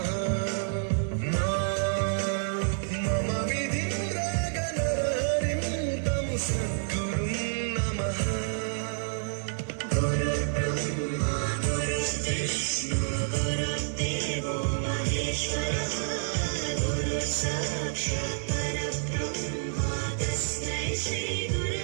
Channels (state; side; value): silent; left; 59 dB below the other